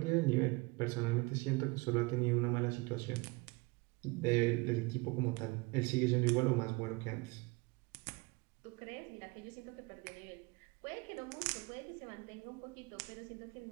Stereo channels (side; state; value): left; quieter; 26.2 dB